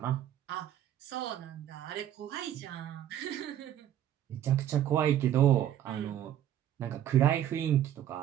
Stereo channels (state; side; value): quieter; left; 11.2 dB